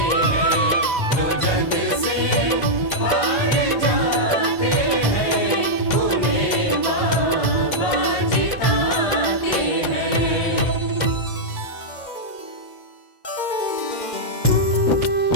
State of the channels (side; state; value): right; late; 2.1 ms